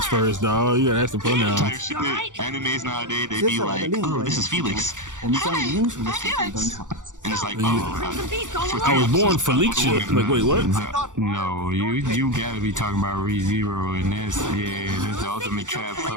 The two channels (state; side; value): late; left; 0.86 ms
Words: first, dog. You gotta ask the pronouns. Animes nowadays, they be like, oh, this is Felix. And it's like, oh, I was born Felicia. Like, wait, what? No, you gotta be talking about ReZero, and that's the ultimate trap